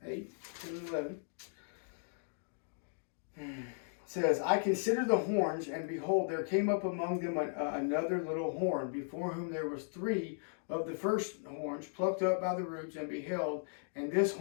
8, 10, and 11. Says, I considered the horns, and behold, there came up among them another little horn, before whom there was 3 of the first horns plucked up by the roots, and beheld, and this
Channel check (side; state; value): right; silent; digital silence